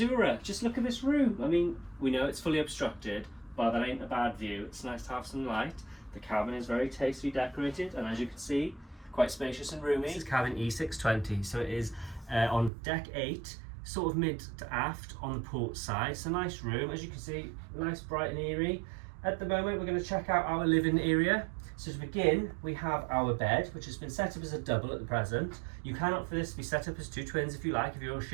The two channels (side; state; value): left; drops out; at 12.7 s